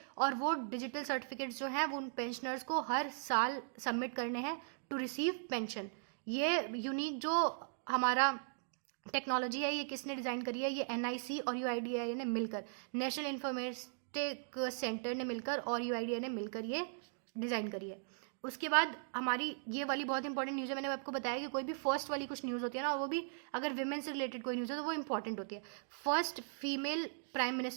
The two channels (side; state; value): left; silent; digital silence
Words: और वो डिजिटल सर्टिफिकेट्स जो हैं वो उन पेंशनर्स को हर साल सबमिट करने हैं टू रिसीव पेंशन। ये यूनिक जो हमारा टेक्नोलॉजी है, ये किसने डिज़ाइन करी है, ये NIC और UIDAI ने मिलकर, नेशनल इंफॉर्मेटिक सेंटर ने मिलकर और UIDAI ने मिलकर ये डिज़ाइन करी है। उसके बाद हमारी ये वाली बहुत इंपॉर्टेंट न्यूज़ है, मैंने आपको बताया कि कोई भी फर्स्ट वाली कुछ न्यूज़ होती है ना, वो भी अगर विमेन से रिलेटेड कोई न्यूज़ है तो वो इंपॉर्टेंट होती है। First female prime